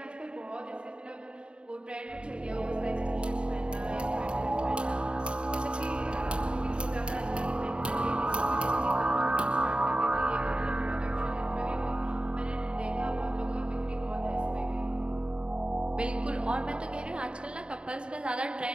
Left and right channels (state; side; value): late; left; 0.053 ms